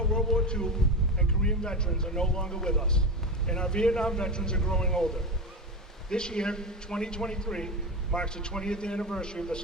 World War II and Korean veterans are no longer with us, and our Vietnam veterans are growing older. This year, 2023, marks the 20th anniversary of the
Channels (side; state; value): both; normal; correlation 0.20